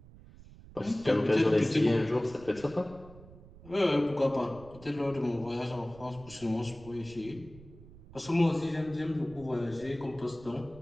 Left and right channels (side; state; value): right; noise; rumble, 20 dB below the sound